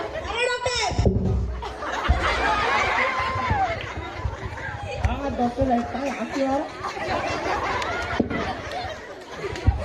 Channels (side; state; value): both; identical; correlation 1.00